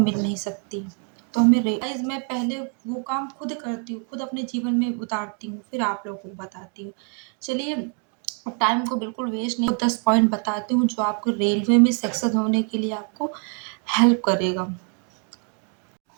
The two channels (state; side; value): quieter; left; 38.4 dB